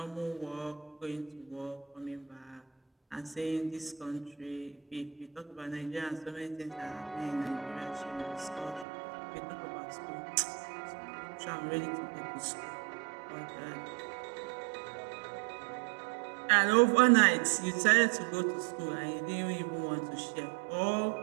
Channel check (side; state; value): left; drops out; at 8.8 s